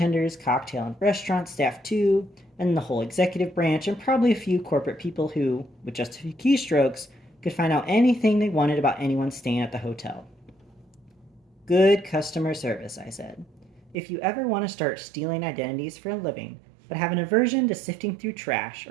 cocktail and restaurant staff too, and the whole executive branch, and probably a few corporate people who, with just a few keystrokes, could find out anything they wanted about anyone staying at the hotel. Good customer service, I said. If you ever want to start stealing identities for a living, but have an aversion to sifting through trash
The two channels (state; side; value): drops out; left; at 14.0 s